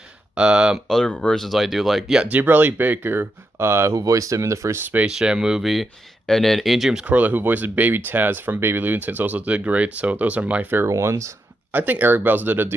Other versions I do like, yeah, Debrelli Baker, who voiced him in the first Space Jam movie, and then Ian James Corlett, who voices Baby Taz from Baby Looney Tunes, also did great, so those are my favorite ones. I think Eric Bells did a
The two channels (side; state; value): both; normal; correlation 0.84